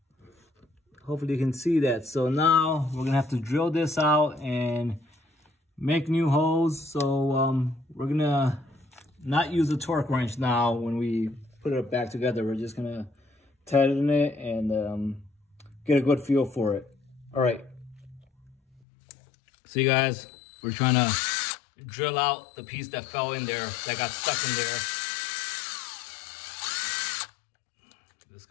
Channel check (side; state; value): right; drops out; at 18.8 s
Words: Hopefully you can see that. So now we're gonna have to drill this out and make new holes. So we're gonna not use the torque wrench now when we put it back together. We're just gonna tighten it and get a good feel for it. All right. See, guys, we're trying to drill out the piece that fell in there, that got stuck in there. This is